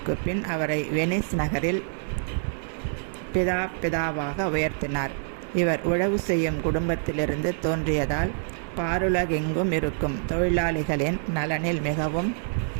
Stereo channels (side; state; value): left; silent; digital silence